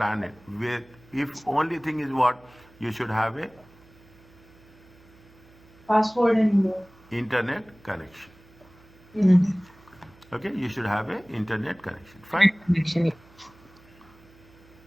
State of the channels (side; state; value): right; noise; hum, 26 dB below the sound